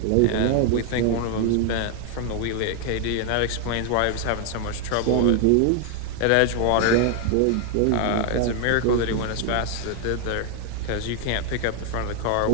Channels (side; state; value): both; different; correlation 0.00